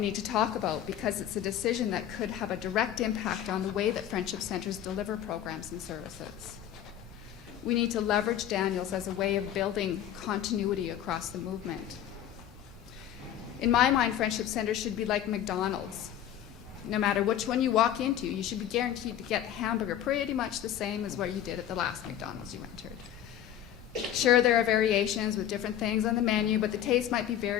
to talk about, because it's a decision that could have a direct impact on the way that Friendship Centers deliver programs and services. We need to leverage Daniels as a way of building continuity across the movement. In my mind, Friendship Centers should be like McDonald's. No matter which one you walk into, you should be guaranteed to get a hamburger pretty much the same as what you did at the last McDonald's you entered. Sure, there are variations with different things on the menu, but the taste might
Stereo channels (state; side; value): quieter; right; 10.7 dB